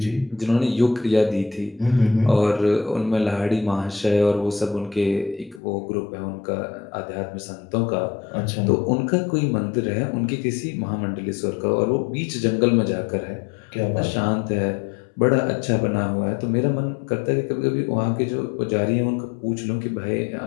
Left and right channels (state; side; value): drops out; right; at 5.6 s